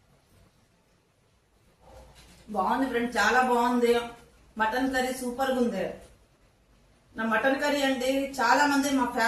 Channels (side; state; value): both; identical; correlation 1.00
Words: బాగుంది ఫ్రెండ్, చాలా బాగుంది. మటన్ కర్రీ సూపర్ గా ఉంది. నా మటన్ కర్రీ అండి చాలా మంది మా